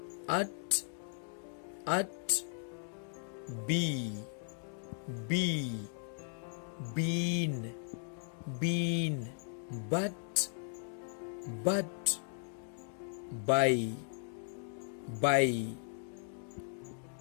at, be, been, but, by,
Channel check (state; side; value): silent; right; 53 dB below the other